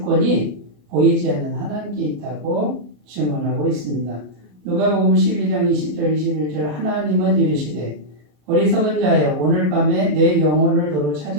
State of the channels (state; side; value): late; left; 33 ms